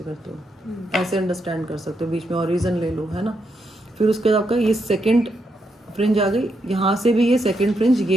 करते हो, ऐसे अंडरस्टैंड कर सकते हो. बीच में ऑरिजन ले लो, है ना. फिर उसके बाद आपका ये सेकेंड फ्रिंज आ गई. यहाँ से भी ये सेकेंड फ्रिंज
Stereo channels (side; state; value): both; normal; correlation 0.80